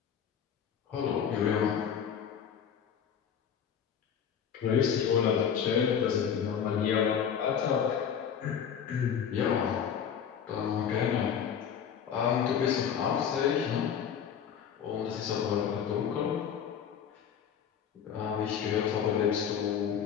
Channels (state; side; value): quieter; right; 8.0 dB